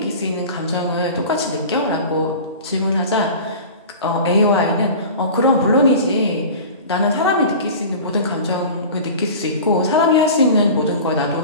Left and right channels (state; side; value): inverted; both; correlation -0.36